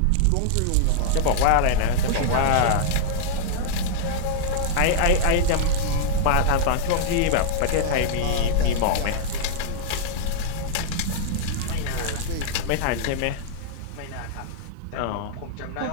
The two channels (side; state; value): both; different; correlation -0.01